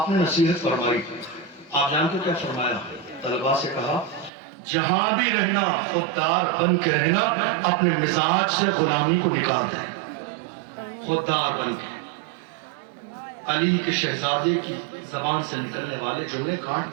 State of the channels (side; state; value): left; drops out; at 4.3 s